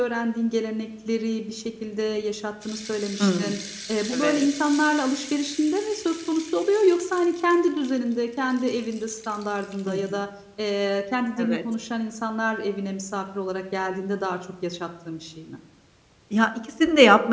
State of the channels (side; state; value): both; identical; correlation 1.00